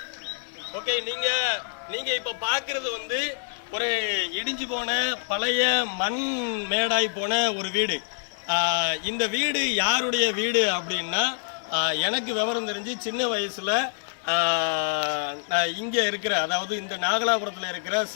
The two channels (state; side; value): silent; right; digital silence